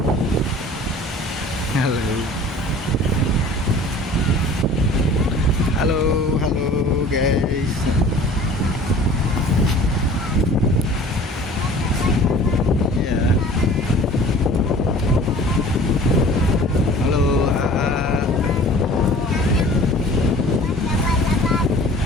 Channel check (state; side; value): normal; both; correlation 0.46